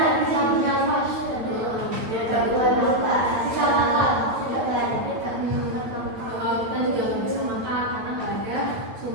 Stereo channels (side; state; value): left; late; 8.7 ms